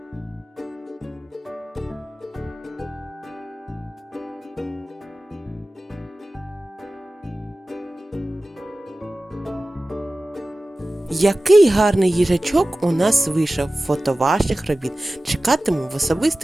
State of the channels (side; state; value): both; normal; correlation 0.96